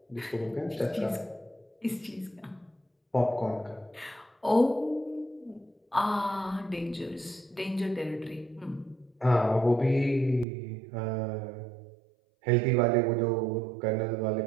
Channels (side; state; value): left; drops out; at 10.5 s